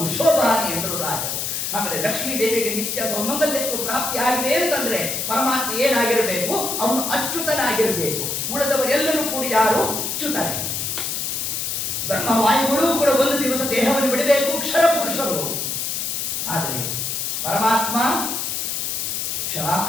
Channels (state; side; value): noise; left; hiss, 2 dB below the sound